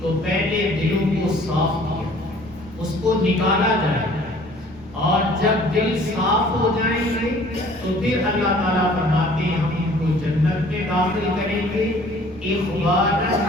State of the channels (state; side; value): normal; both; correlation 0.53